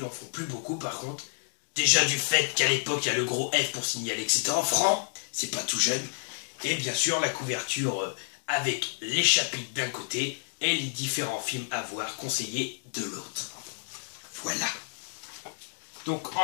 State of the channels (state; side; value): silent; right; digital silence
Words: font plus beaucoup par contre. Déjà du fait qu'à l'époque il y a le gros F pour signaler que c'était en franc, c'est pas tout jeune. Et bien sûr la couverture avec les chapitres d'un côté et les différents films à voir conseillés de l'autre. Voilà. Donc